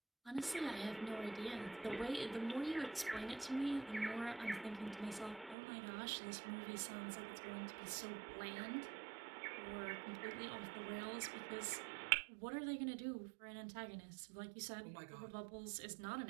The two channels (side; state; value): left; drops out; at 5.6 s